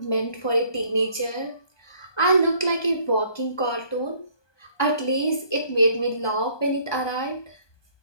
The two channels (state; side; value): late; right; 1.2 ms